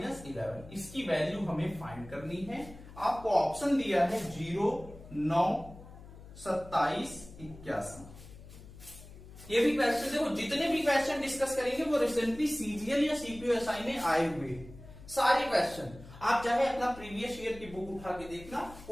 11। इसकी value हमें फाइंड करनी है। आपको ऑप्शन दिया है 0, 9, 27, 81। ये भी क्वेश्चन देखो, जितने भी क्वेश्चन डिस्कस करेंगे वो रिसेंटली सीजीएल या सीपीएसआई में आए हुए सारे क्वेश्चन। आप चाहे अपना प्रीवियस ईयर की बुक उठा के देखना,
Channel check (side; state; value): left; noise; hum, 17 dB below the sound